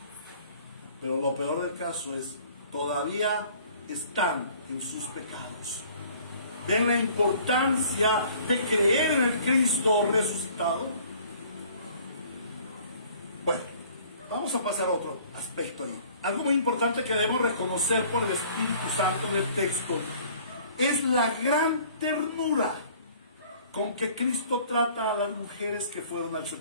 Pero lo peor del caso es, todavía están en sus pecados. ¿Ven la importancia de creer en el Cristo resucitado? Bueno, vamos a pasar a otro aspecto ahí. Algo muy importante que debemos reconocer por el Espíritu Santo en el texto es la gran ternura con que Cristo trata a las mujeres que fueron al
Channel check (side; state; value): both; inverted; correlation -0.53